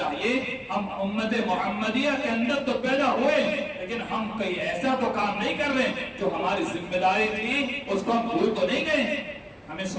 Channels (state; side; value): identical; both; correlation 1.00